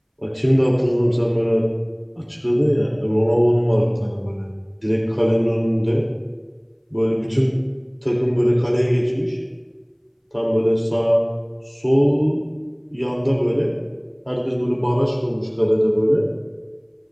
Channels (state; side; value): identical; both; correlation 1.00